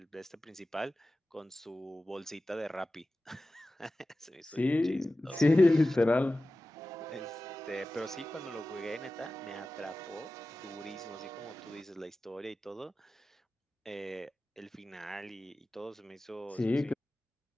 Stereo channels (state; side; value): normal; both; correlation 0.95